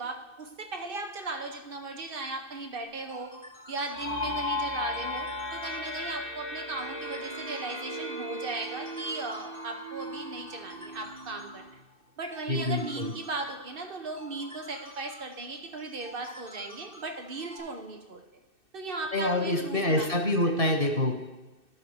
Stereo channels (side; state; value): left; late; 2.6 ms